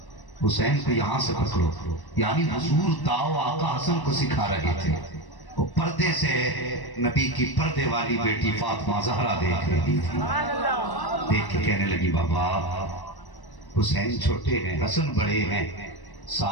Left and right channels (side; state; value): right; late; 1.0 ms